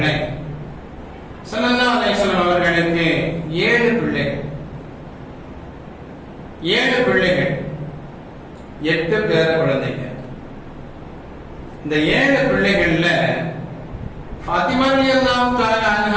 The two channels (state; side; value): identical; both; correlation 1.00